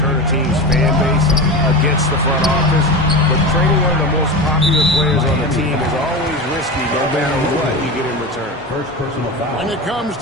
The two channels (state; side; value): normal; both; correlation 0.24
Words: a team's fan base against the front office. But trading one of the most popular players on the team is always risky no matter what you get in return. First personal foul. When it comes